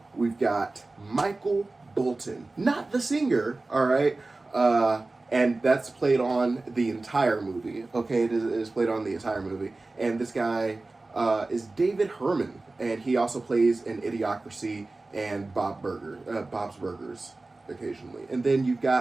we've got Michael Bolton, not the singer. All right. And that's played on the entire movie. Okay, it is played on the entire movie, and this guy is David Herman, and he also plays in Idiocracy and Bob's Burgers occasionally. And then you've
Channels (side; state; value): left; quieter; 3.2 dB